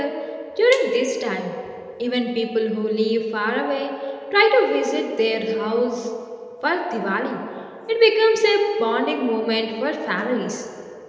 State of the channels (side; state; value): both; identical; correlation 1.00